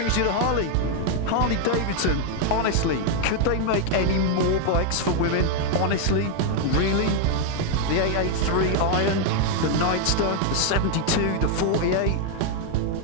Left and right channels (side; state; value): both; different; correlation 0.00